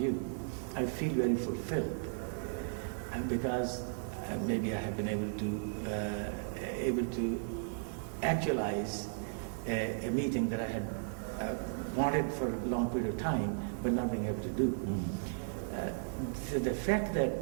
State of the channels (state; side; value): silent; left; digital silence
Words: I feel very fulfilled because maybe I have been able to actualize a meeting that I had wanted for a long period of time, but not being able to do. So the fact